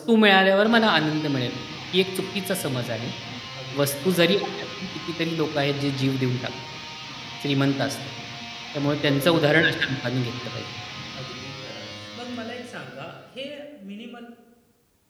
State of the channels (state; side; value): identical; both; correlation 1.00